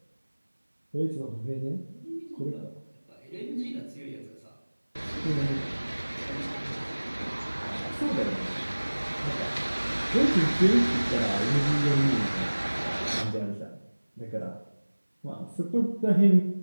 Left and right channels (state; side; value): inverted; both; correlation -1.00